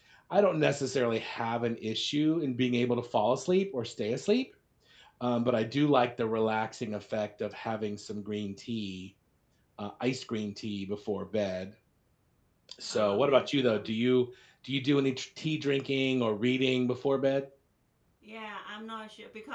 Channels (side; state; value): both; identical; correlation 1.00